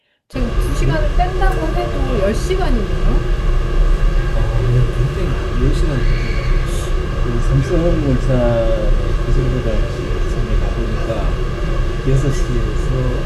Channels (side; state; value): both; identical; correlation 1.00